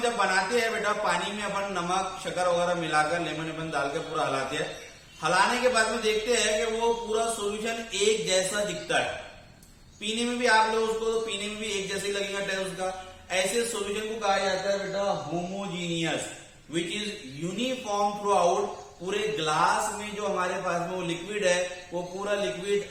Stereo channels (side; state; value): both; identical; correlation 1.00